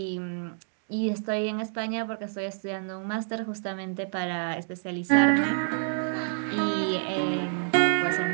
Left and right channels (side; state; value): left; silent; digital silence